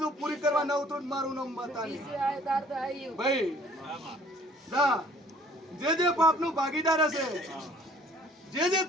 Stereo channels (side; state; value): both; normal; correlation 0.56